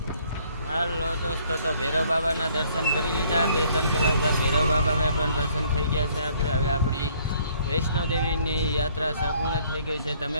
હાલો દોસ્તો, તો ભૈરવ બાબાના દર્શન કરી લીધા. 2-3 કલાક બાદ ભૈરવ બાબામાં પણ દર્શન થઈ ગયા છે. આપણે હવે આપણી વૈષ્ણોદેવીની યાત્રા સંપૂર્ણ થઈ ગઈ છે.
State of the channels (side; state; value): both; inverted; correlation -0.62